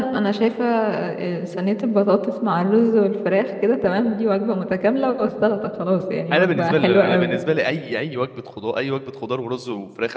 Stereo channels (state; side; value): identical; both; correlation 1.00